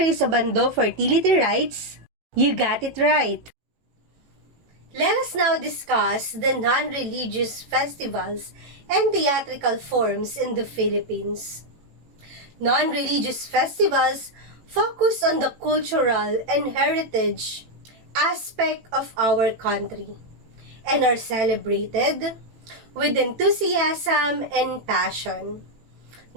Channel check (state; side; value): late; left; 18 ms